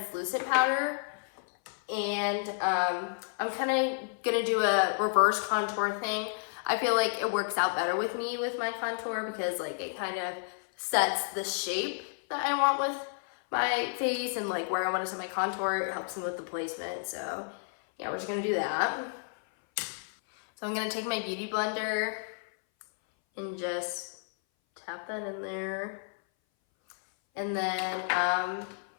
powder. And I'm kind of gonna do a reverse contour thing. I feel like it works out better with me with my contour because like it kind of sets the shape that I want with my face and like where I want to set my contour. It helps them with the placement. So yeah, we're just gonna do that. So I'm gonna take my Beauty Blender and just tap that in there. And then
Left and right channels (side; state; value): right; silent; 57 dB below the other